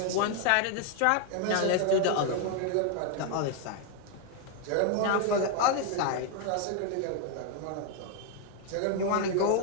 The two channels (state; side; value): different; both; correlation 0.01